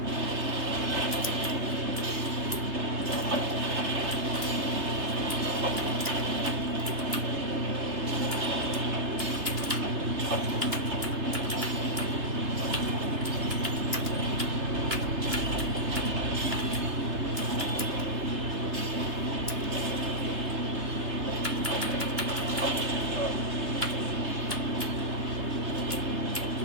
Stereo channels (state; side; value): late; left; 3.3 ms